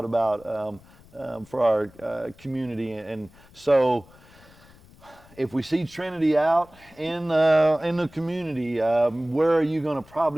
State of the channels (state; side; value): noise; left; rumble, 25 dB below the sound